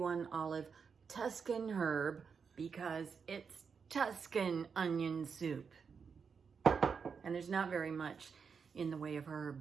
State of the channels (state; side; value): quieter; left; 5.9 dB